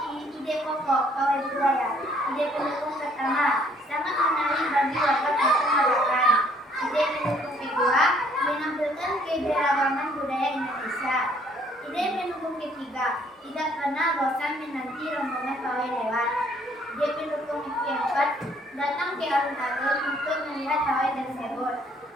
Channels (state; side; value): normal; both; correlation 0.63